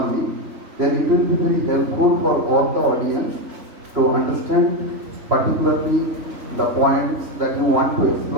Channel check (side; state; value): left; late; 3.5 ms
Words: then it will be very helpful for all the audience to understand particularly the points that you want to